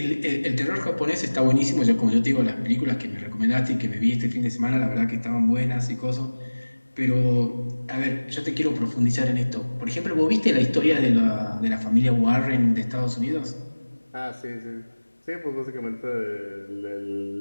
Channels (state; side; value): inverted; both; correlation -1.00